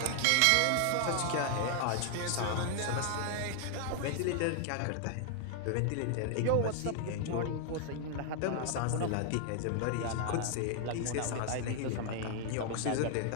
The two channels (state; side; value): different; both; correlation 0.00